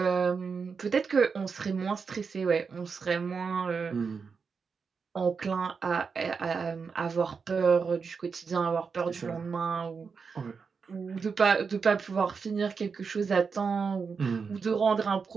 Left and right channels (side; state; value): left; quieter; 5.4 dB